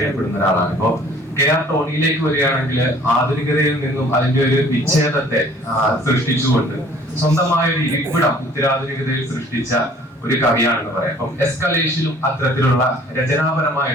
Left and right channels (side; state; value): both; normal; correlation 0.54